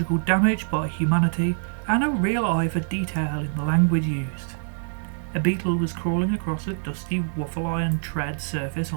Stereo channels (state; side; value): silent; left; digital silence